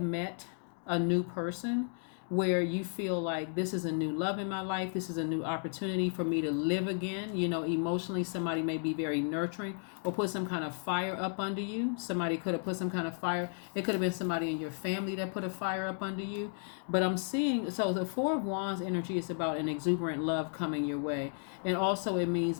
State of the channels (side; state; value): right; silent; 55 dB below the other